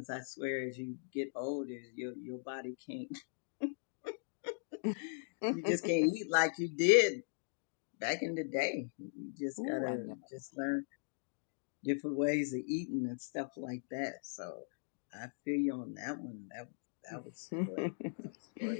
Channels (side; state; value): right; silent; digital silence